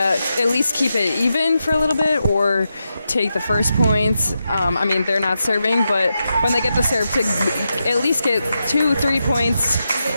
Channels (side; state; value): both; inverted; correlation -0.87